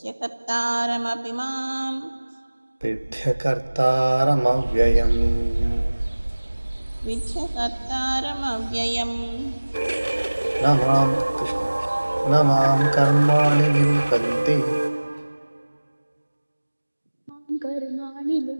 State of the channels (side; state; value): both; inverted; correlation -1.00